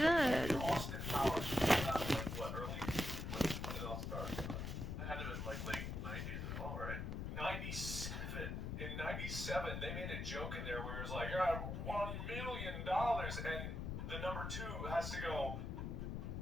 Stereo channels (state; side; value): noise; left; rumble, 3 dB below the sound